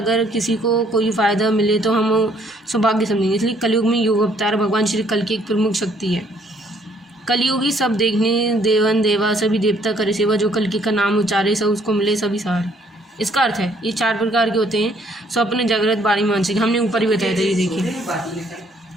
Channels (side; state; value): both; normal; correlation 0.64